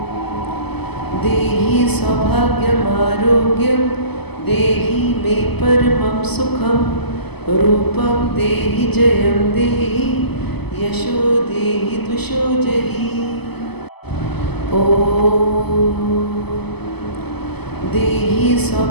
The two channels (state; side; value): late; right; 0.98 ms